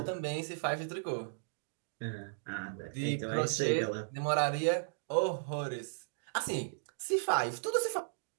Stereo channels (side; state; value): left; silent; digital silence